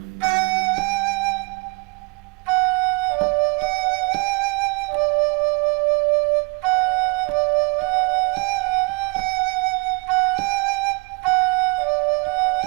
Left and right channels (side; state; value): left; quieter; 29.5 dB